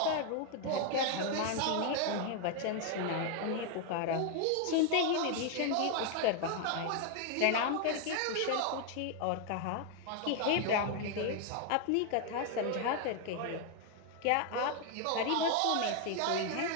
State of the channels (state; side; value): different; both; correlation 0.00